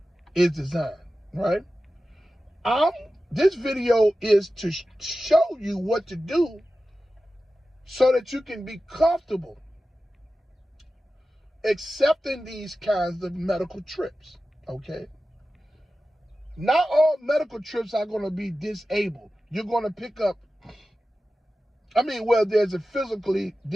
is designed, right? This video is to show you what to do so that you can be comfortable accepting these kinds of medical trips, okay? Not all medical trips are going to be disabled. You're going to pick up, there's a physically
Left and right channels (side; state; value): both; normal; correlation 0.94